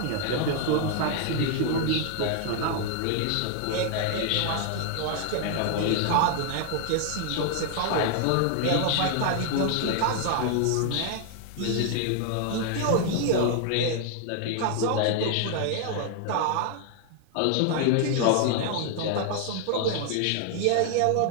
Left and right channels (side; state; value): both; different; correlation 0.00